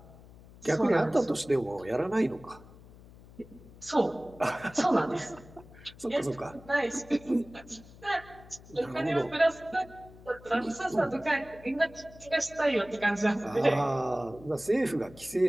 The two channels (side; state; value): left; noise; hum, 21 dB below the sound